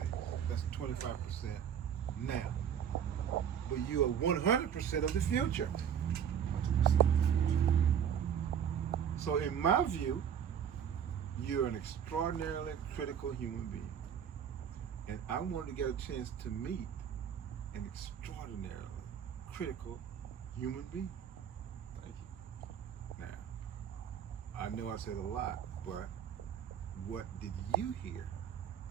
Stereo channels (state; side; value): quieter; left; 8.5 dB